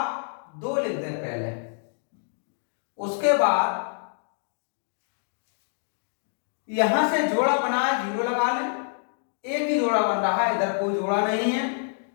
2 लिख दें पहले, उसके बाद यहां से जोड़ा बनाया 0 लगा लें, एक ही जोड़ा बन रहा है, इधर कोई जोड़ा नहीं है,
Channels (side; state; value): right; silent; digital silence